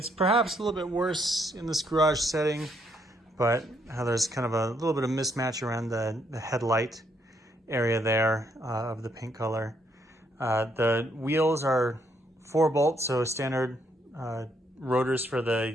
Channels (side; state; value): both; normal; correlation 0.73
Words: perhaps a little bit worse in this garage setting, but how there's kind of a little bit of mismatch around the headlight area there of the paint color. The wheels are 4 bolts, so standard rotors for